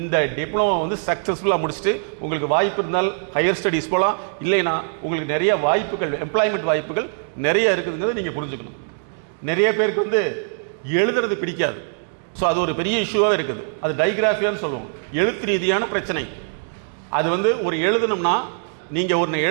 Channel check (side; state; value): left; silent; digital silence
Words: டிப்ளமோ வந்து சக்ஸஸ்ஃபுல்லாக முடிச்சுட்டு உங்களுக்கு வாய்ப்பு இருந்தால் ஹையர் ஸ்டடீஸ் போகலாம். இல்லைன்னா உங்களுக்கு நிறைய வாய்ப்புகள், எம்ப்ளாய்மெண்ட் வாய்ப்புகள் நிறைய இருக்குதுங்கிறத நீங்கள் புரிஞ்சுக்கணும். நிறைய பேருக்கு வந்து எழுதுறது பிடிக்காது. ஸோ அது ஒரு பெரிய இஷ்யூவாகவே இருக்குது. அது டைகிராஃபியான்னு சொல்லுவோம், எழுத்து ரீதியான பிரச்சனை. அது வந்து ஒரு எழுதணும்னா நீங்கள் ஒன்று